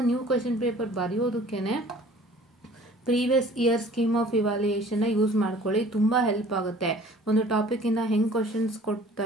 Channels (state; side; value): normal; both; correlation 0.50